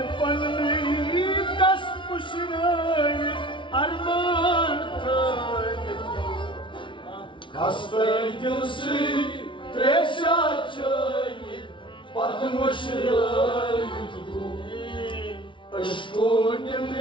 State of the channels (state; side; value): late; right; 0.24 ms